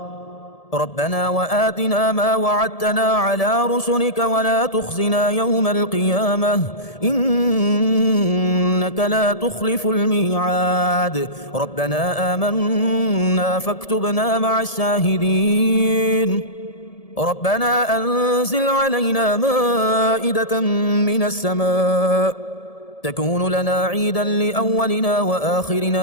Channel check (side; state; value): right; late; 1.7 ms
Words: ربنا وآتنا ما وعدتنا على رسلك ولا تخزنا يوم القيامة إنك لا تخلف الميعاد. ربنا آمنا فاكتبنا مع الشاهدين. ربنا أنزل علينا مائدة من السماء تكون لنا عيدا لأولنا